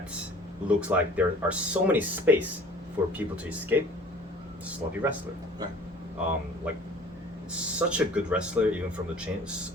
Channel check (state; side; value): normal; both; correlation 0.48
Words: looks like there are so many space for people to escape, sloppy wrestler. Right. Like such a good wrestler, even from